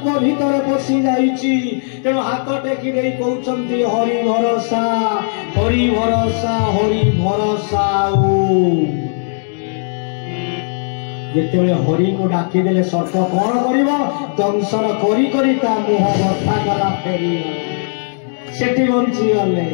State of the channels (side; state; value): right; silent; digital silence